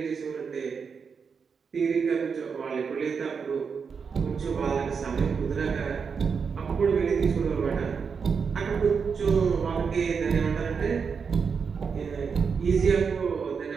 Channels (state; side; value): quieter; left; 5.9 dB